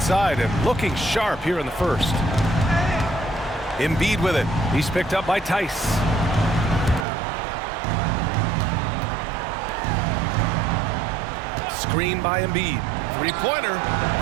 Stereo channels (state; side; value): drops out; left; at 7.1 s